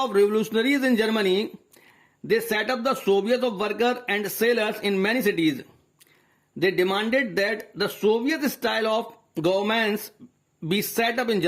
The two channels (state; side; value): identical; both; correlation 1.00